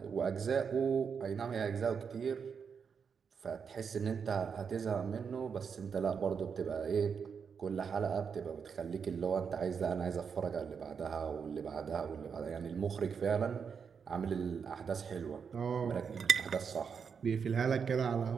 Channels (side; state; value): left; quieter; 6.4 dB